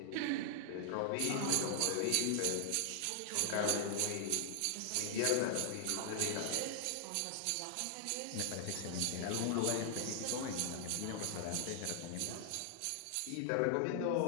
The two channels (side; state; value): both; different; correlation 0.00